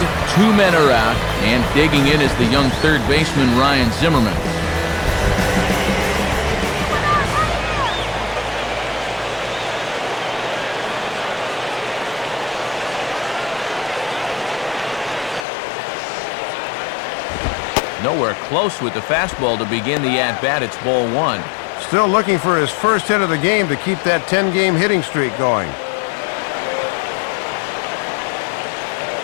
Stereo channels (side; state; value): right; drops out; at 15.5 s